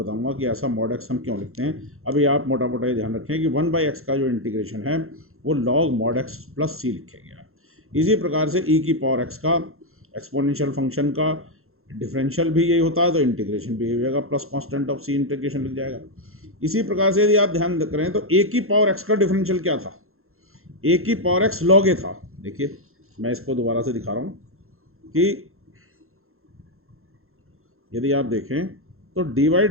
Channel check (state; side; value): late; left; 0.62 ms